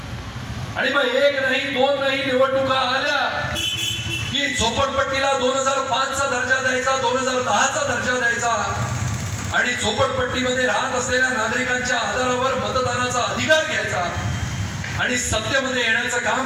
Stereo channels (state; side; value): identical; both; correlation 1.00